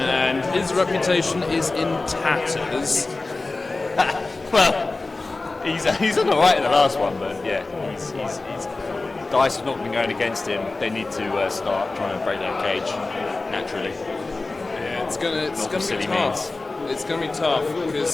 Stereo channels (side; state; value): right; quieter; 3.4 dB